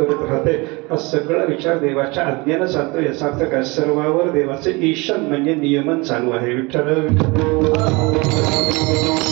राहते. हा सगळा विचार देवाच्या आज्ञेनं चालतो. याचा अर्थ काय, सर्वावर देवाचे ईशन म्हणजे नियमन चालू आहे. विठ्ठल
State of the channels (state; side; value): quieter; left; 25.8 dB